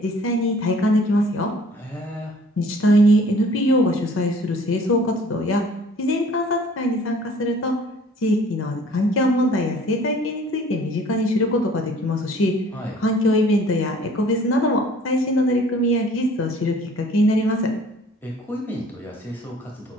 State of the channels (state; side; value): normal; both; correlation 0.52